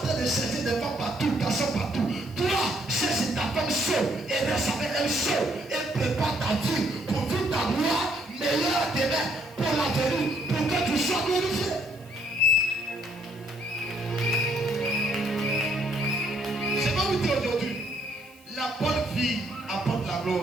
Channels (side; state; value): right; noise; hiss, 27 dB below the sound